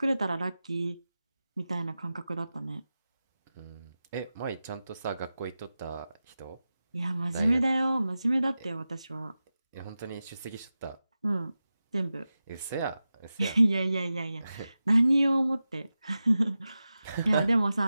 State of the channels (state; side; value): inverted; both; correlation -0.93